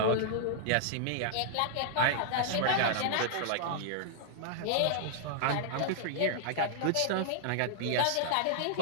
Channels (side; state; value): both; different; correlation -0.01